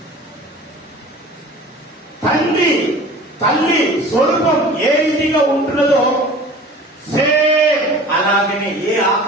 తల్లి స్వరూపం ఏ రీతిగా ఉంటున్నదో సేమ్ అలాగనే ఏ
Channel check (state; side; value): normal; both; correlation 0.42